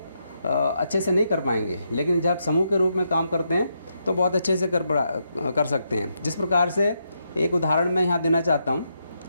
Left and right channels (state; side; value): inverted; both; correlation -0.81